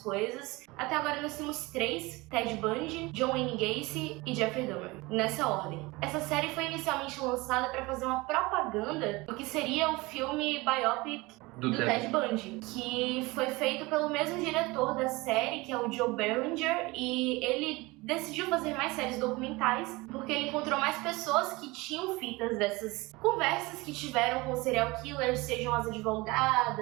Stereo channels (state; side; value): quieter; left; 22.8 dB